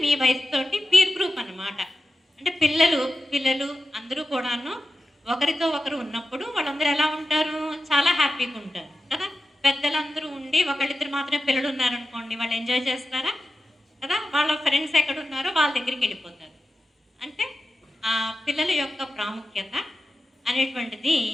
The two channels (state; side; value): normal; both; correlation 0.92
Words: మీ వయసుతోటి పీర్ గ్రూప్ అన్నమాట. అంటే పిల్లలు అందరూ కూడాను ఒకరితో ఒకరు ఉన్నప్పుడు వాళ్ళందరూ ఎలా ఉంటారు? చాలా హ్యాపీగా ఉంటారు కదా. పెద్దలందరూ ఉండి ఒకళ్ళిద్దరు మాత్రమే పిల్లలు ఉన్నారనుకోండి, వాళ్ళు ఎంజాయ్ చేస్తారా? కదా, వాళ్ళ ఫ్రెండ్స్ ఎక్కడ ఉన్నారో వాళ్ళ దగ్గరికి వెళ్ళిపోతారు. అంటే ఆ పిల్లల యొక్క ప్రాముఖ్యత అనేటువంటిది